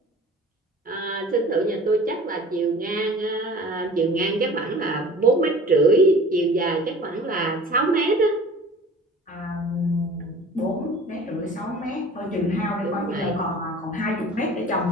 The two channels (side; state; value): both; normal; correlation 0.44